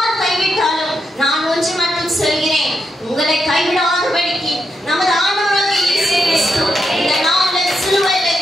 கைவிட்டாலும் நான் ஒன்று மட்டும் சொல்கிறேன், உங்களை கைவிடாதபடிக்கு நமது ஆண்டவராகிய இயேசு கிறிஸ்து இந்த நாளில் சிலுவையிலே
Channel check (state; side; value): normal; both; correlation 0.83